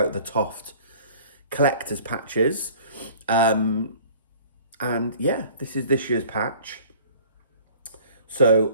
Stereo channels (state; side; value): inverted; both; correlation -0.49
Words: the Toft collector's patches. And yeah, this is this year's patch. So